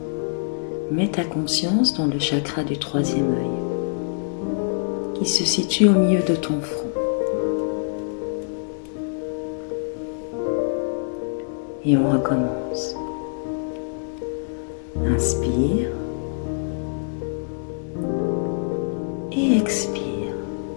mets ta conscience dans le chakra du troisième œil, qui se situe au milieu de ton front. Et on recommence. Inspire et expire.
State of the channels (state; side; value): silent; right; digital silence